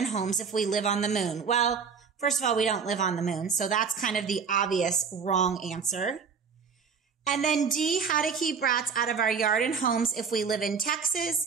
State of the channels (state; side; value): quieter; left; 6.0 dB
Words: homes if we live on the moon. Well, first of all, we don't live on the moon, so that's kind of the obvious wrong answer. And then D, how to keep rats out of our yard and homes if we live in Texas.